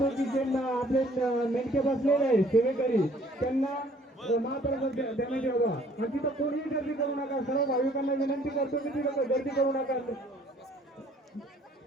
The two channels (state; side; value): normal; both; correlation 0.58